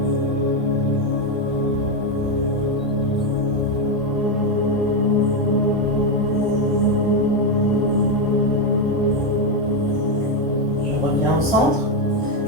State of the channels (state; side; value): normal; both; correlation 0.06